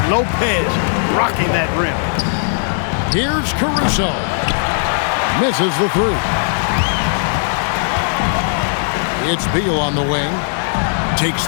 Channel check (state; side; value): silent; right; digital silence